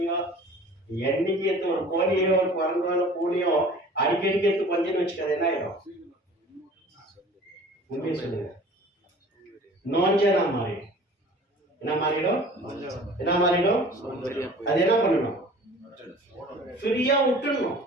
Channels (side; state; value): both; normal; correlation 0.45